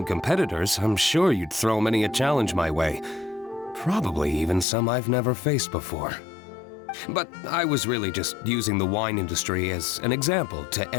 competitors, I'm sure you'd throw many a challenge my way. Probably even some I've never faced before. But I was really just using the wine industry as an example to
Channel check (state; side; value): drops out; right; at 4.7 s